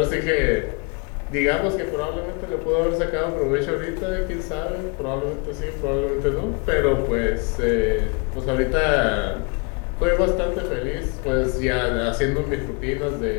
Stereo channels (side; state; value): right; quieter; 31.9 dB